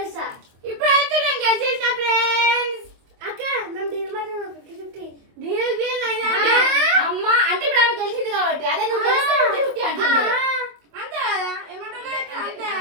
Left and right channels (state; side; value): late; left; 25 ms